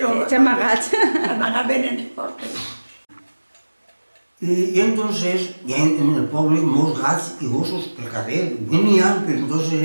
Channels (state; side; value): inverted; both; correlation -1.00